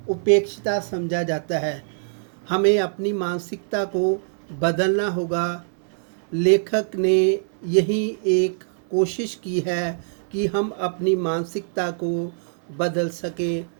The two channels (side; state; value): left; silent; digital silence